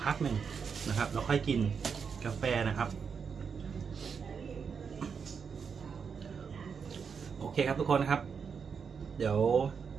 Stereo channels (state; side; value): quieter; left; 6.2 dB